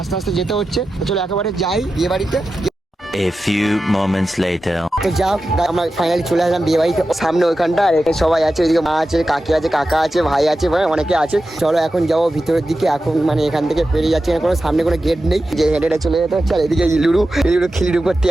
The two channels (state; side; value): normal; both; correlation 0.92